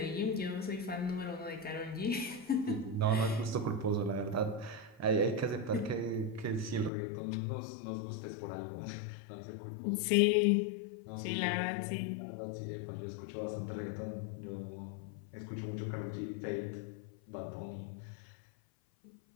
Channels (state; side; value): drops out; right; at 6.9 s